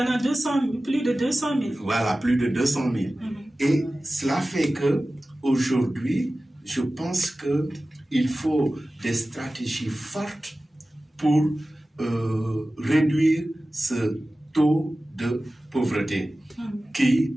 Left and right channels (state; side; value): normal; both; correlation 0.96